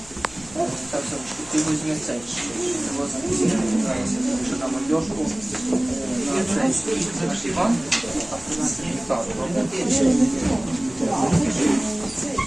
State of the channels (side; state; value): left; noise; hum, 21 dB below the sound